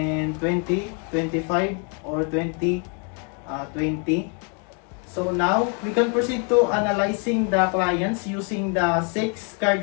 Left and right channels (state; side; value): quieter; right; 36.7 dB